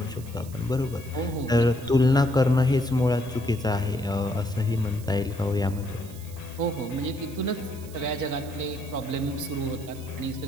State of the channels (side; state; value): right; noise; hiss, 19 dB below the sound